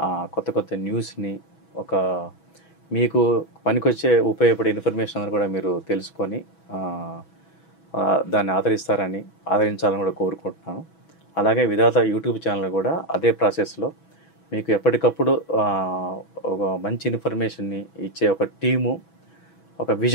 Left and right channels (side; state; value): right; late; 6.1 ms